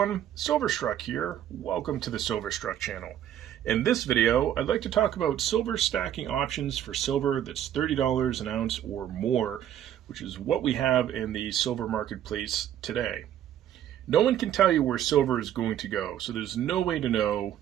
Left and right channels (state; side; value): quieter; left; 10.9 dB